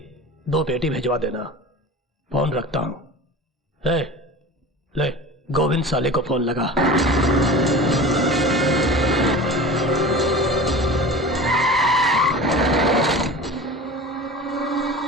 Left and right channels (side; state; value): both; normal; correlation 0.35